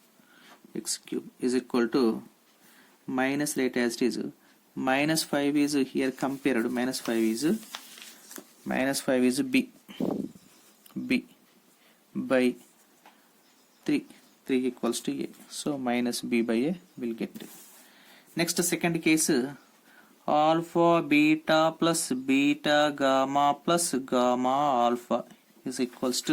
x cube is equal to minus, rate as it is, minus 5 is here compared, minus 5 is b by 3 equals to a. So minus b by a will get. Next, second case, alpha beta plus beta gamma plus gamma alpha is equals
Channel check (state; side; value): identical; both; correlation 1.00